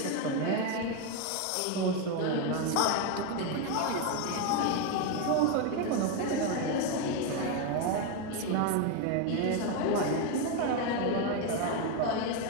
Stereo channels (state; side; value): different; both; correlation 0.02